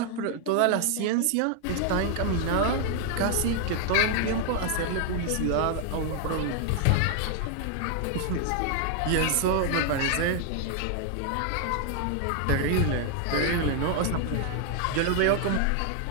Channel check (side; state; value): both; different; correlation 0.00